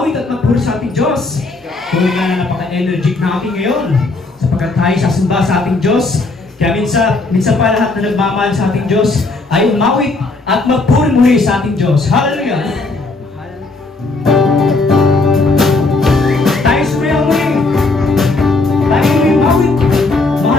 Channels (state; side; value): quieter; right; 3.4 dB